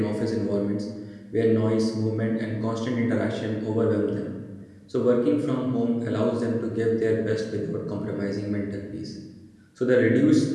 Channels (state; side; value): identical; both; correlation 1.00